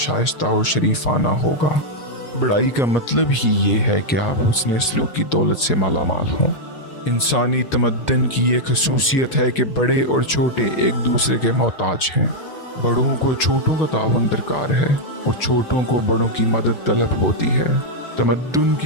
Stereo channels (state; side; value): late; right; 6.2 ms